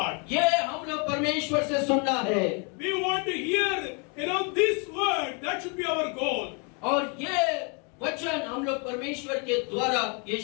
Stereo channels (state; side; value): quieter; right; 34.8 dB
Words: ये हम लोग परमेश्वर से सुनना है, We want to hear, you know, this word. That should be our goal. और ये वचन हम लोग परमेश्वर के द्वारा ये